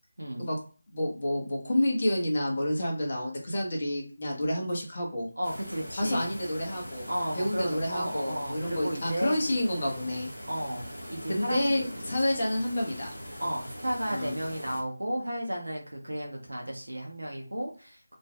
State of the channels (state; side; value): inverted; both; correlation -0.96